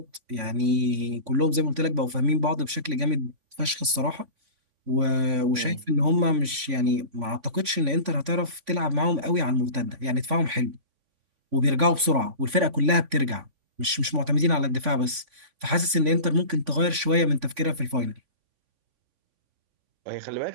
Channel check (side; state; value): left; late; 3.5 ms